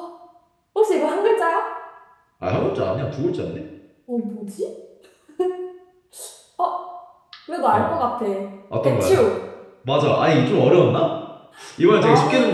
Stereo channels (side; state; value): both; identical; correlation 1.00